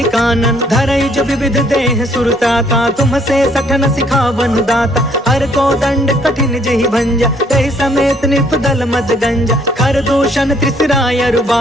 कानन, धरई जो विविध देह सुरताता, तुम से सठन सिखावन दाता, हर को दंड कठिन जहि भंजा, तहि समेत निपदल मद गंजा, खर दूषण त्रिसराय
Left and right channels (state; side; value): normal; both; correlation 0.64